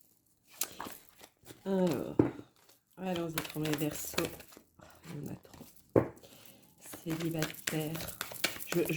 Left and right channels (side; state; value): both; identical; correlation 1.00